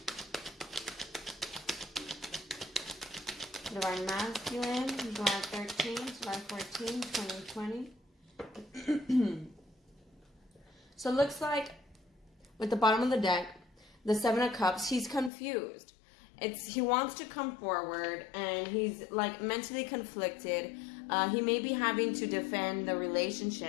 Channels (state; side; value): drops out; right; at 15.3 s